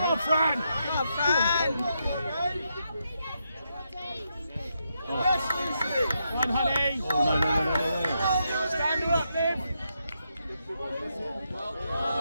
Fran. One, honey. Oh, no. Stand her up, Liv.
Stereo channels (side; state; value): both; inverted; correlation -0.82